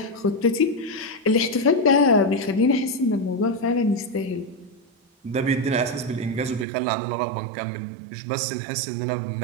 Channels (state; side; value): drops out; left; at 6.7 s